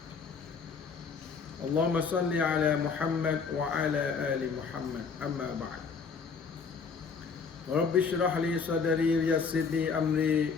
اللهم صل على محمد وعلى آل محمد أما بعد رب اشرح لي صدري ويسر لي أمري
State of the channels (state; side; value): quieter; right; 5.5 dB